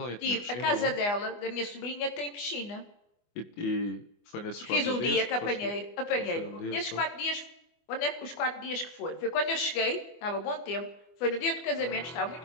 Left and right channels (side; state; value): right; late; 24 ms